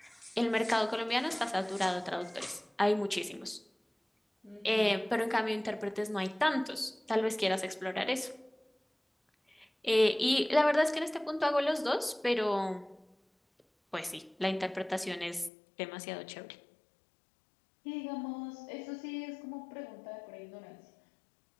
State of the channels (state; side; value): drops out; right; at 15.5 s